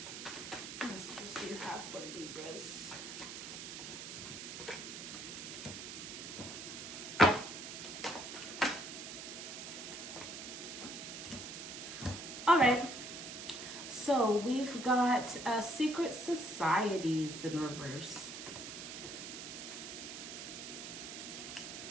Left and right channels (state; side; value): noise; right; hiss, 8 dB below the sound